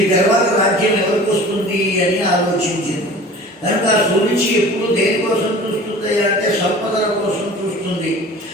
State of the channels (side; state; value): both; normal; correlation 0.42